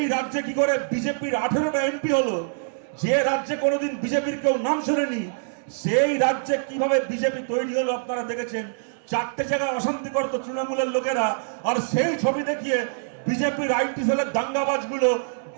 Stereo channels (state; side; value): silent; left; digital silence